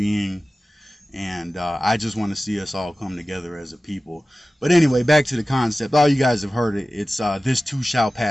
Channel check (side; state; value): both; normal; correlation 0.96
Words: and I just want to see us all come together as a people. But anyway, back to the concept. All you guys have heard it. It's this too shall